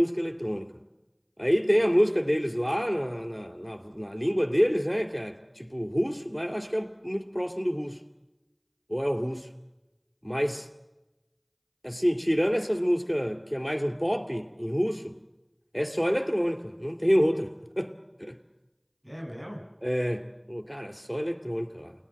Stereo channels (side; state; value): both; identical; correlation 1.00